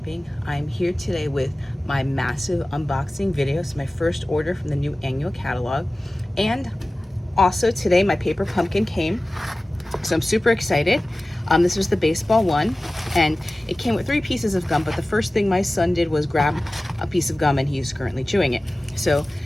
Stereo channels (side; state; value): both; normal; correlation 0.96